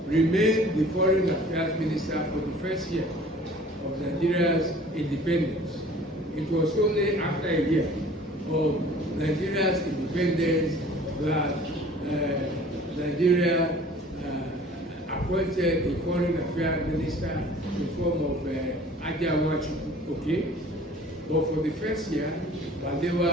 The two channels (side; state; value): both; normal; correlation 0.49